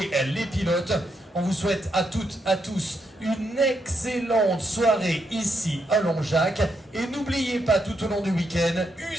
les pilotes. On vous souhaite à toutes, à tous une excellente soirée ici à Longjac. Et n'oubliez pas tout au long du week-end,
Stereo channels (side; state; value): both; normal; correlation 0.80